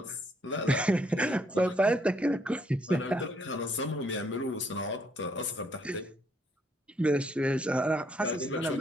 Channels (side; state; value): both; normal; correlation 0.70